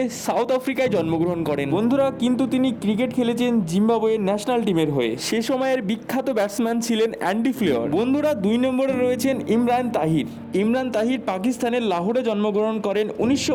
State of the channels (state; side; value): identical; both; correlation 1.00